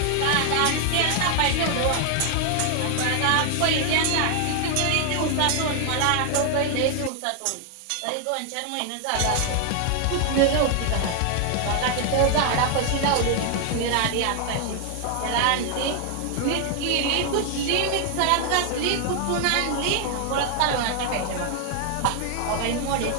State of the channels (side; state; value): both; different; correlation 0.00